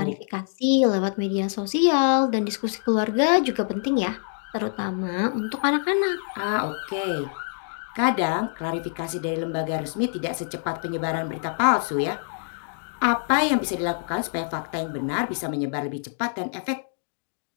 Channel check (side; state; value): right; silent; digital silence